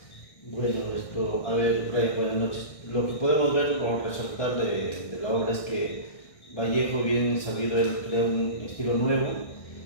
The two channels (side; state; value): right; late; 1.6 ms